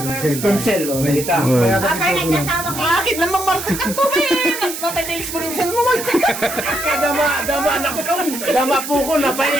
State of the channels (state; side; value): noise; right; hiss, 8 dB below the sound